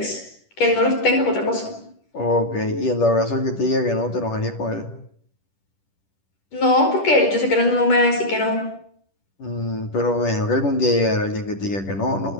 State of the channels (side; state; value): right; late; 10 ms